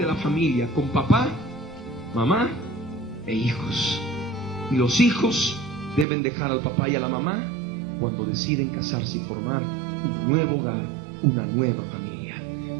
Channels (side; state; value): left; drops out; at 6.1 s